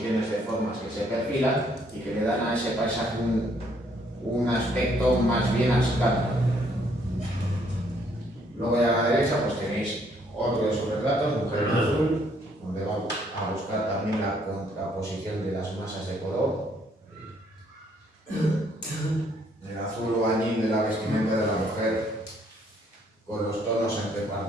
de formas que se perfilan y que le dan a ese paisaje un aspecto más bien abstracto. Luego a la derecha pues tenéis otro de sus retratos, Mujer en Azul, donde vamos a buscar también la contraposición de las masas de color. El azul o añil de la vestimenta de la mujer con los tonos entre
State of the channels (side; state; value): both; normal; correlation 0.67